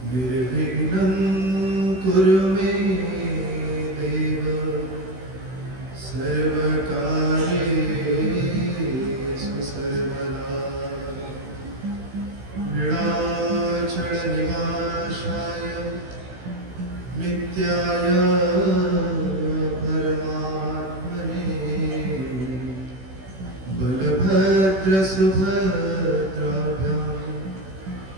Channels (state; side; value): late; left; 16 ms